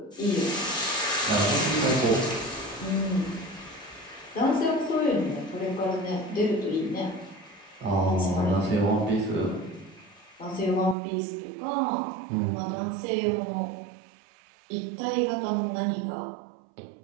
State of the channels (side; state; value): left; drops out; at 11.0 s